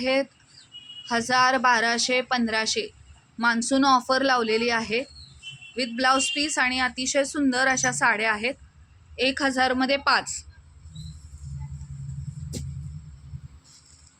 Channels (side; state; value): both; identical; correlation 1.00